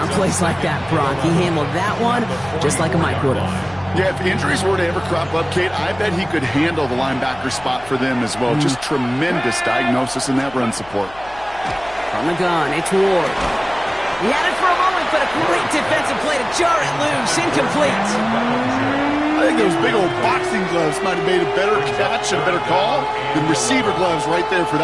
plays like that, Brock. He handled that one just like a Mike would have. Yeah, if injuries were to ever crop up, Kate, I bet he could handle the linebacker spot for them as well. Just tremendous diagnosis in that run support. From the gun, it's Ward. He had it for a moment, but a great defensive play to jar it loose. Incomplete. I think those big old boxing gloves might have made a better catch and a better call than receiver gloves right there for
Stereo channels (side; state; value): left; noise; hum, 22 dB below the sound